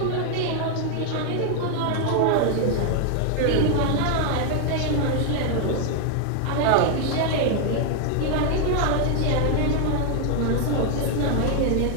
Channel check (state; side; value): different; both; correlation 0.00